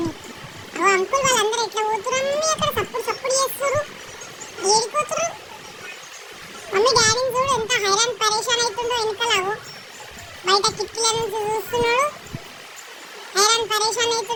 అవి అంకుల్ వాళ్ళందరూ ఎట్లా పోతున్నారు మమ్మీ? అక్కడ సప్పుడు చేస్తారు. ఏడిపోతున్నారు మమ్మీ? డాడీని చూడు ఎంత హైరాన్ పరేషాన్ అవుతుందో వెనకలావు. బయట కిటికీల నుంచి చూస్తున్నాడు, హైరాన్ పరేషాన్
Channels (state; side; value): identical; both; correlation 1.00